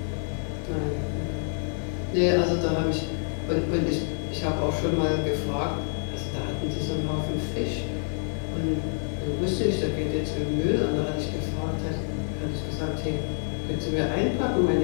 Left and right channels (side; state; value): right; silent; 56 dB below the other